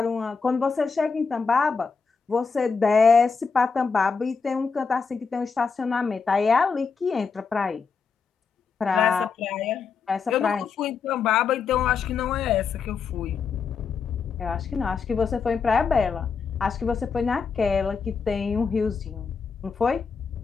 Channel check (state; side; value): quieter; right; 5.3 dB